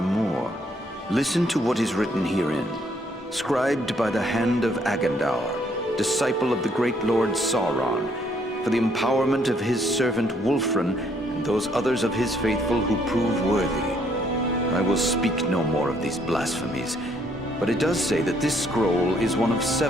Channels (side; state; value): both; normal; correlation 0.68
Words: more. Listen to what is written herein. Scribed by the hand of Agandaur, disciple of the great Lord Sauron, for the empowerment of his servant Wulfrun and those others of his faithful who prove worthy. I will speak no more of these blasphemies, but it does say that this scroll is one of